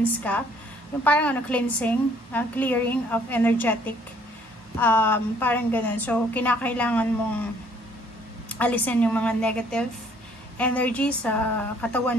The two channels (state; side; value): normal; both; correlation 0.61